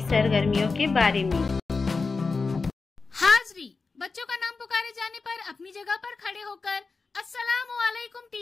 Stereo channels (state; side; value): quieter; right; 4.3 dB